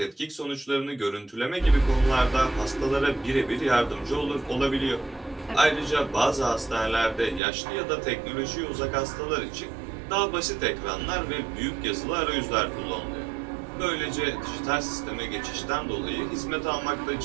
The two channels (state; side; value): drops out; left; at 7.4 s